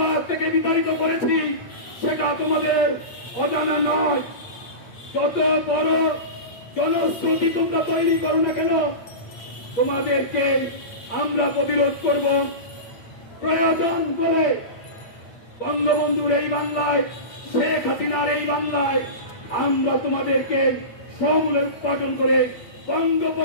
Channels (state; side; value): late; right; 8.8 ms